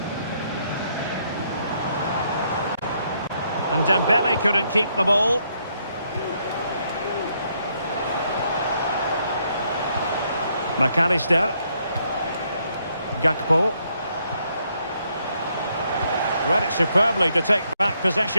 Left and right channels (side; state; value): both; inverted; correlation -0.73